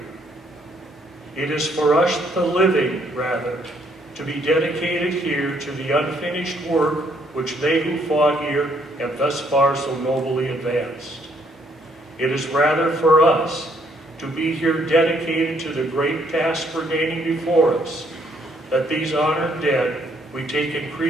It is for us, the living, rather, to be dedicated here to the unfinished work which they who fought here have thus far so nobly advanced. It is rather for us to be here dedicated to the great task remaining before us, that these honored dead, we take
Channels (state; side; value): normal; both; correlation 0.69